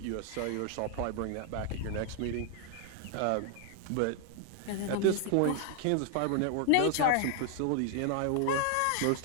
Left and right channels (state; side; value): different; both; correlation 0.00